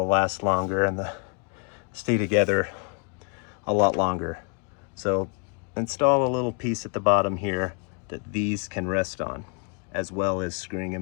last longer and stay together a lot longer. So install a little piece at the bottom here that these can rest on, as well as screwing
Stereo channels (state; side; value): quieter; right; 39.5 dB